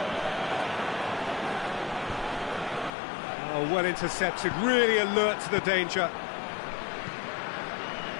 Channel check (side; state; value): right; drops out; at 2.9 s